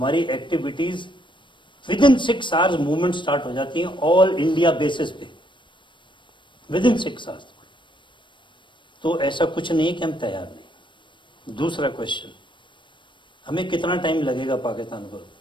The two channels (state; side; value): late; right; 0.23 ms